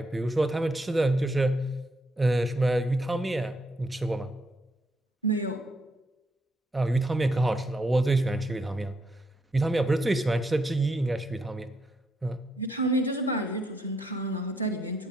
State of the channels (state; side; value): normal; both; correlation 0.77